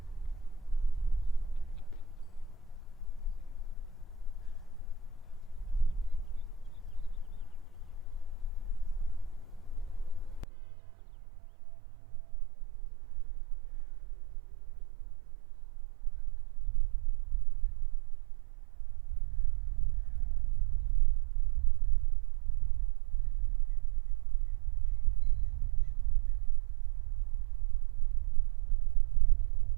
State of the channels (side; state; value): left; drops out; at 10.5 s